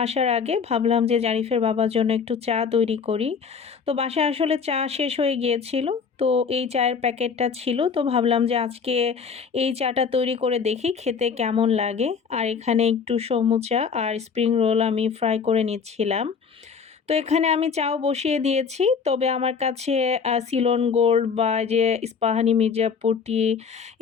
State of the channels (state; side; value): quieter; right; 5.9 dB